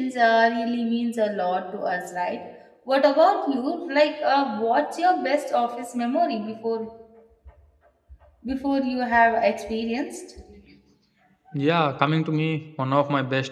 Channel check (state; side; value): identical; both; correlation 1.00